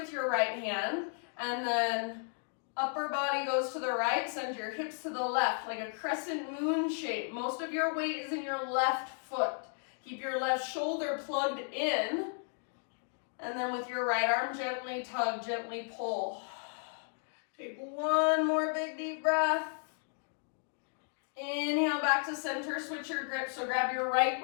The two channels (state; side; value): silent; right; 55 dB below the other